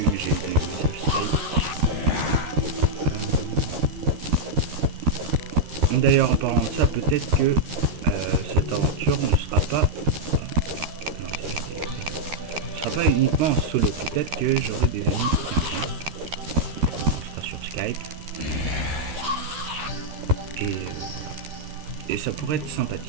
D'ailleurs, en parlant de ça, peut-être que cette aventure ne sera pas... non, ce sera pas uniquement en solo. Peut-être que j'aurai des amis qui viendront. On sera sur Skype. Et ça pourrait être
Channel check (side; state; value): left; late; 13 ms